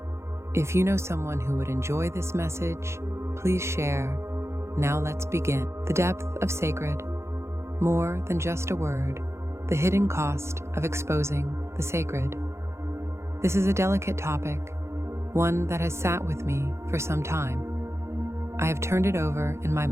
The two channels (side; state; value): left; late; 0.13 ms